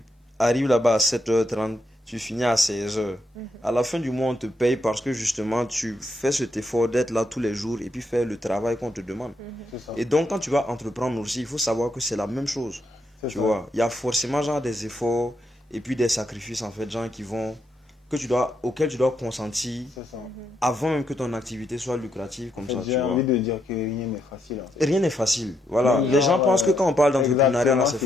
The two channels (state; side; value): normal; both; correlation 0.79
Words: arrives là-bas à 7h30, tu finis à 16h. À la fin du mois, on te paye parce que justement, tu fais cet effort d'être là tous les jours et puis faire le travail qu'on te demande. C'est ça. Et donc, quand tu vas entreprendre aussi, il faut savoir que c'est la même chose. C'est Tu ça. vois, il y a forcément genre des efforts et puis des sacrifices en fait, gens qui vont, auxquels tu dois consentir C'est ça. avant même que ton activité soit lucrative comme ça. Tu J'ai vois. envie de dire que rien n'est facile en fait. Rien n'est facile. Voilà. Oui, Les gens genre, pensent que quand on parle d'entrepreneuriat, là, c'est